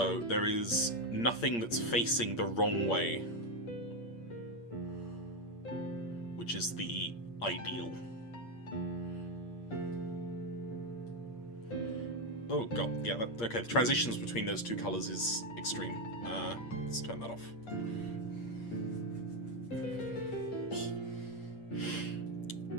there is nothing that's facing the wrong way, which is the ideal. Oh god, yeah, okay, the transitions between those two colours is extreme. Let's turn that off.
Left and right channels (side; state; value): right; late; 8.6 ms